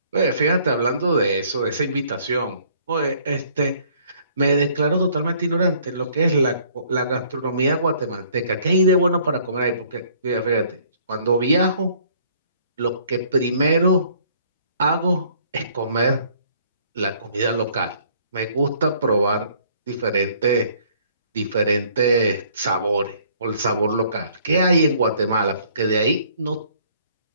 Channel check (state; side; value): inverted; both; correlation -0.60